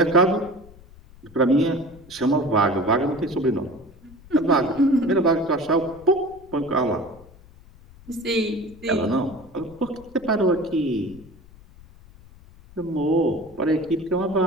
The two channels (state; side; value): noise; left; rumble, 22 dB below the sound